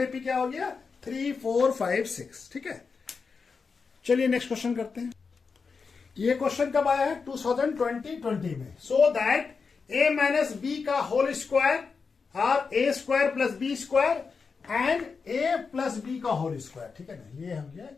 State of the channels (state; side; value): quieter; right; 5.1 dB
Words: क्या हो गया 3, 4, 5, 6। ठीक है, चलिए नेक्स्ट क्वेश्चन करते हैं। ये क्वेश्चन कब आया है 2020 में। So that a minus B का होल स्क्वायर और a square plus B square and a plus B का होल स्क्वायर। ठीक है ना, ये हो गया